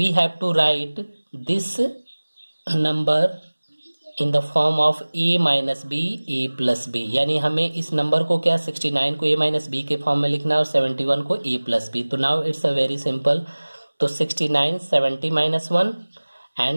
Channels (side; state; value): both; inverted; correlation -1.00